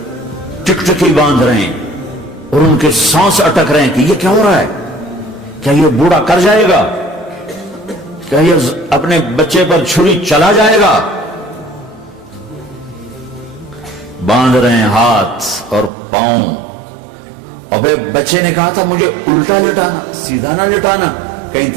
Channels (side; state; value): left; drops out; at 15.9 s